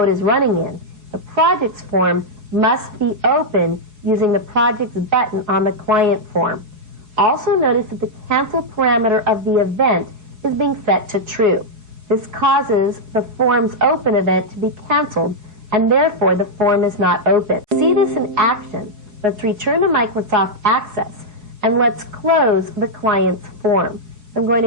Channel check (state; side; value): late; left; 4.7 ms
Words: is running in, the projects form must be open using the projects button on the client form. Also notice that the cancel parameter of the event is being set to true. This causes the form's open event to be canceled, and therefore the form is not open. To see this in action, let's return to Microsoft Access, and let's close the client's form. I'm going